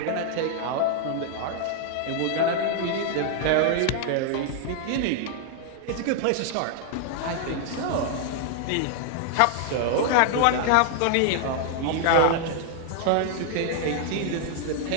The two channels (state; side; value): different; both; correlation 0.00